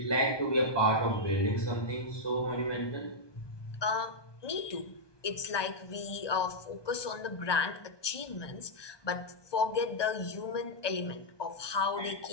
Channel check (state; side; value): late; right; 1.2 ms